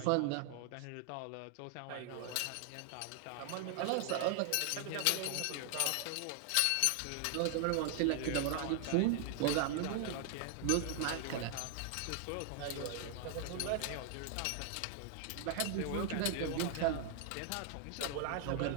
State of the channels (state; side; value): different; both; correlation 0.00